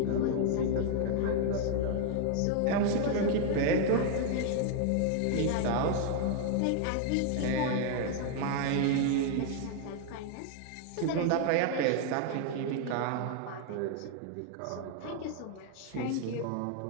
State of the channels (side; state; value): both; different; correlation 0.00